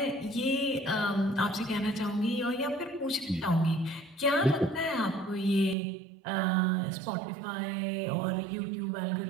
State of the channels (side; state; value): left; drops out; at 5.8 s